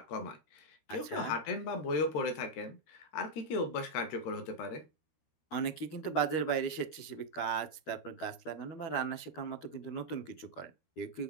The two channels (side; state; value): right; late; 13 ms